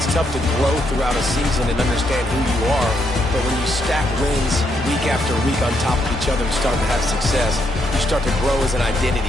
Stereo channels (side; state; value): both; normal; correlation 0.76